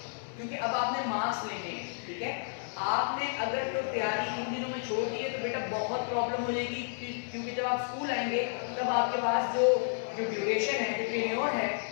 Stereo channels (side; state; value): right; silent; digital silence